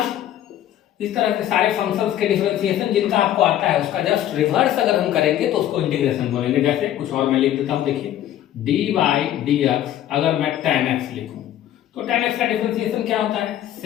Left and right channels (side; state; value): right; quieter; 12.0 dB